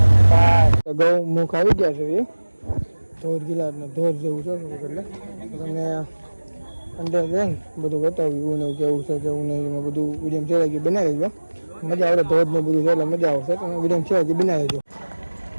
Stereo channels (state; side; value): inverted; both; correlation -1.00